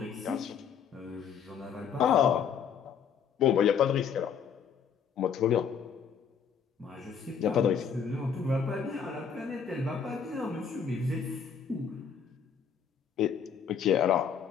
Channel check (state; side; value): quieter; right; 7.2 dB